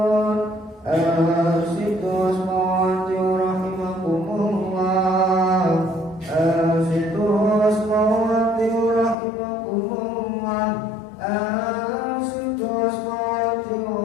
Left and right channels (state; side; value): drops out; right; at 9.2 s